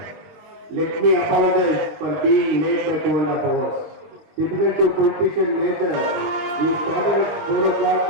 let me apologize for being late by 2.5 hours. Typical to politician nature, we started at 4 o'clock,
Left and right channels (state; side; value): late; left; 20 ms